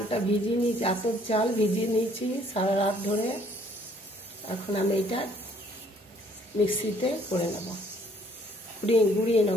ভিজিয়ে নিয়েছি, আতপ চাল ভিজিয়ে নিয়েছি সারা রাত ধরে। এখন আমি এটা মিক্সিতে করে নেব, গুঁড়িয়ে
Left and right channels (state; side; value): normal; both; correlation 0.62